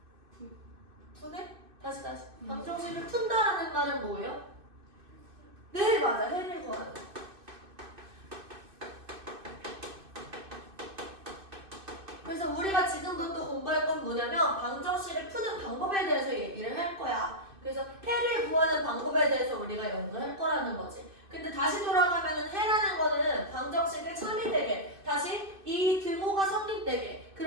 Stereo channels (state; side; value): late; left; 2.6 ms